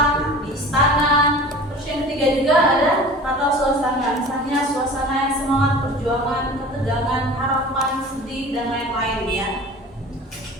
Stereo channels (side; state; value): both; normal; correlation 0.40